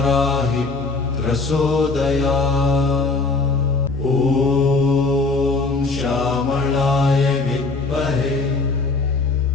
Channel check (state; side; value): quieter; right; 3.8 dB